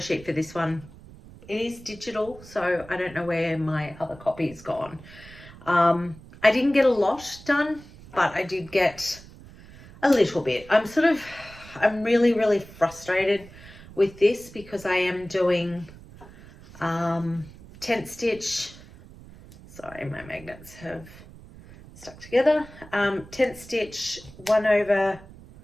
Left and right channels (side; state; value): right; noise; rumble, 19 dB below the sound